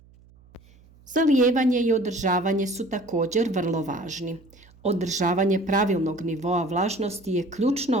Zalijevanje i održavanje su također vrlo važni. Održavanje pravilnog nivoa vlažnosti je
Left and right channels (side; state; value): right; noise; hum, 27 dB below the sound